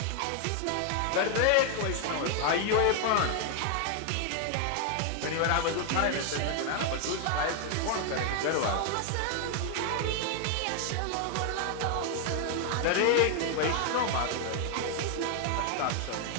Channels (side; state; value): both; different; correlation 0.01